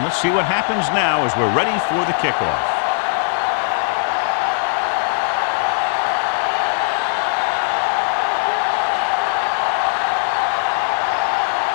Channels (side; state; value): right; silent; digital silence